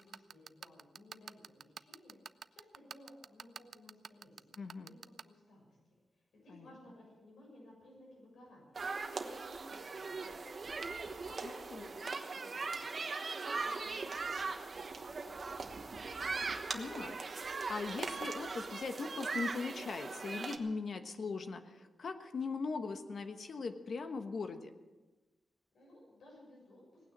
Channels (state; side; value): normal; both; correlation 0.87